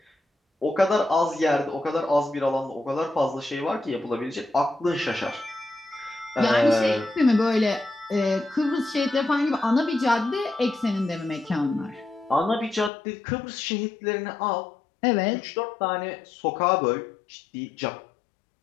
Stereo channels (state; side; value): drops out; right; at 12.9 s